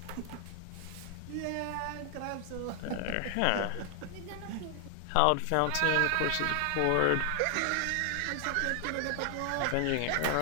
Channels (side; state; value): both; different; correlation 0.00